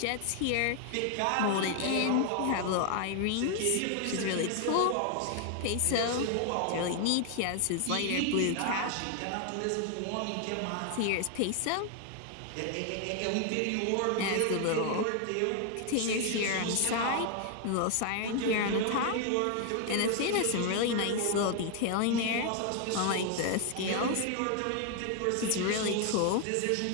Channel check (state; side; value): different; both; correlation 0.00